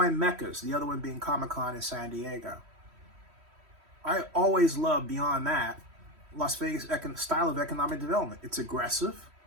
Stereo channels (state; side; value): late; left; 3.1 ms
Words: meccas, the other one being Comic-Con in San Diego. I always love, beyond that, Las Vegas style of economic development. It's aggressive